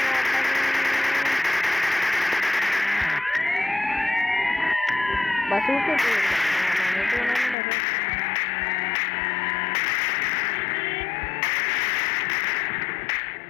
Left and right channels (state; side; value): drops out; right; at 7.6 s